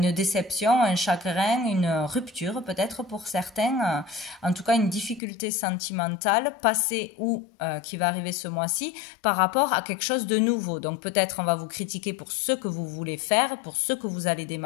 déception, un chagrin, une rupture, peut-être pour certains, en tout cas une difficulté sentimentale, passée ou qui va arriver ce mois-ci, par rapport à quelque chose de nouveau. Donc peut-être on va vous critiquer pour ce que vous voulez faire, pour ce que vous allez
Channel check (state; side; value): drops out; right; at 5.2 s